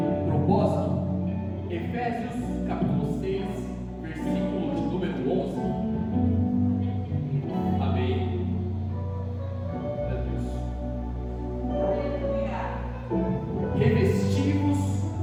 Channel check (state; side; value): identical; both; correlation 1.00